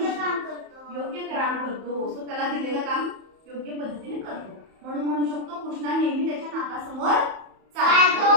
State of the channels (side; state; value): left; late; 31 ms